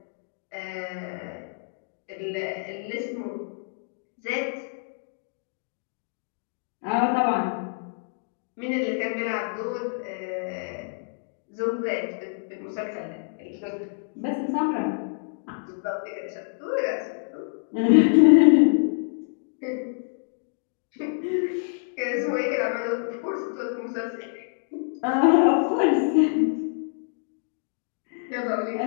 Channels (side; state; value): right; silent; digital silence